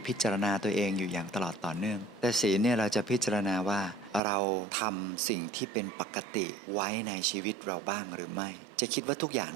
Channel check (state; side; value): drops out; left; at 4.2 s